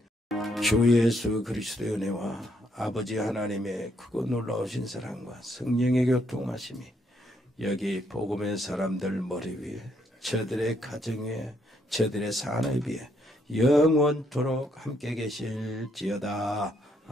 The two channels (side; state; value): both; normal; correlation 0.73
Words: 주 예수 그리스도의 은혜와 아버지 하나님의 크고 놀라우신 사랑과 성령의 교통하심이 여기 복음의 사람들 머리 위에, 저들의 가정 위에, 저들의 산업 위에 영원토록 함께 계실지어다.